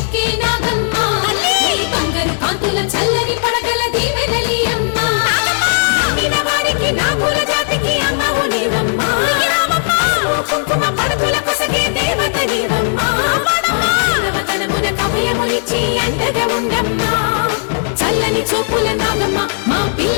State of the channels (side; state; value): right; silent; digital silence